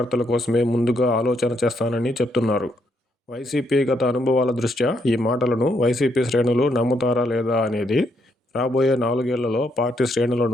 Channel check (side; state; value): both; normal; correlation 0.75